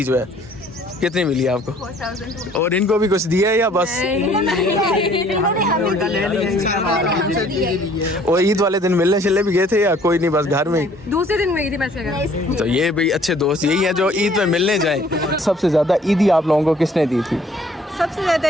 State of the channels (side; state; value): both; normal; correlation 0.57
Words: जो है कितनी मिली है आपको? और इनको भी कुछ दिया है या बस? और ईद वाले दिन मिलने चले भी गए थे या कोई नहीं, बस घर में? दूसरे दिन में गई थी मैं। तो ये भाई अच्छे दोस्त यही है जो ईद में मिलने जाए। सबसे ज्यादा ईदी आप लोगों को किसने दी थी? सबसे ज्यादा